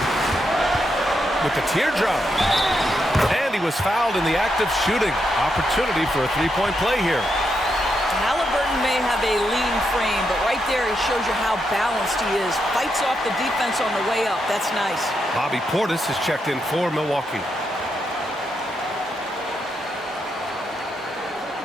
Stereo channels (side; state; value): both; normal; correlation 0.82